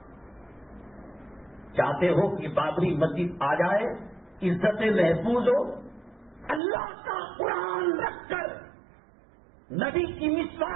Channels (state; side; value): drops out; left; at 6.6 s